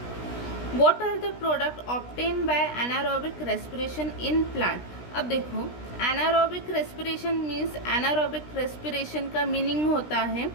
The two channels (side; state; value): right; late; 16 ms